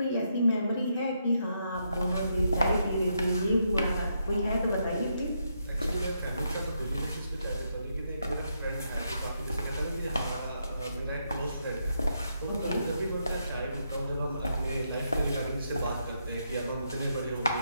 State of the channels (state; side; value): inverted; both; correlation -0.79